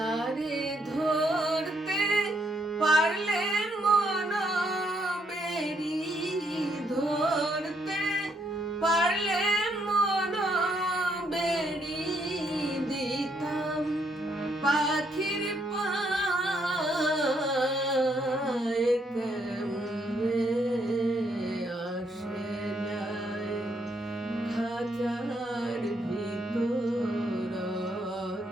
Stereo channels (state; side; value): normal; both; correlation 0.74